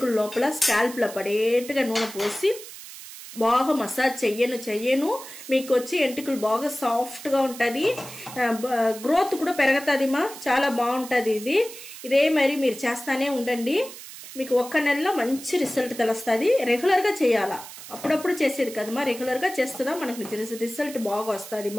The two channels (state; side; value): noise; right; hiss, 14 dB below the sound